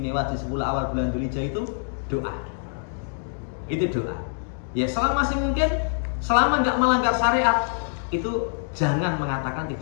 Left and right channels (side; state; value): right; silent; 62 dB below the other